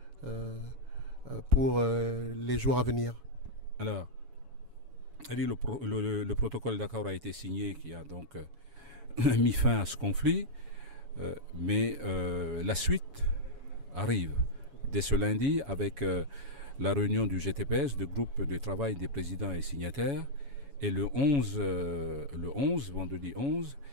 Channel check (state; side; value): late; left; 7.1 ms